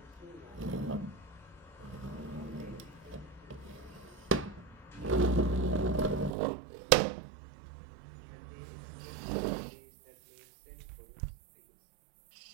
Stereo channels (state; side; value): drops out; left; at 6.3 s